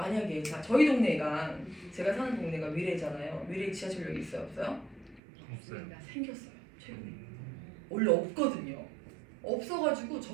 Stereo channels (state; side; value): drops out; left; at 5.2 s